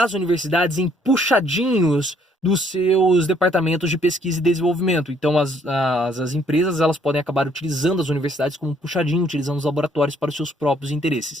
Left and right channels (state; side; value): normal; both; correlation 0.65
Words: universidades em puxadinhos dos seus departamentos de pesquisa e desenvolvimento. Então as empresas elas podem acabar utilizando as universidades como um puxadinho, utilizando os laboratórios para os seus próprios